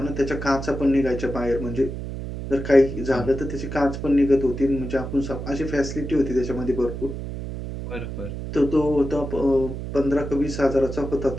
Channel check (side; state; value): right; noise; hum, 7 dB below the sound